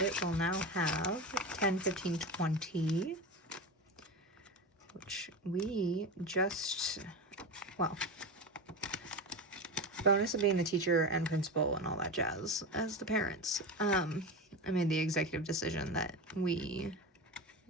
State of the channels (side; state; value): both; normal; correlation 0.23